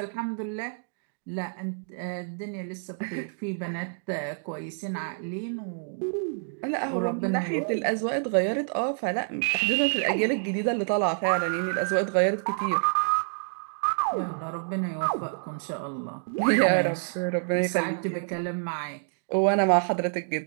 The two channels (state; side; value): silent; left; digital silence